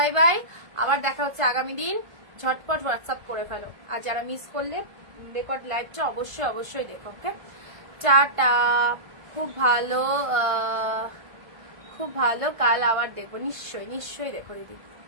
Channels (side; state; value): left; late; 1.5 ms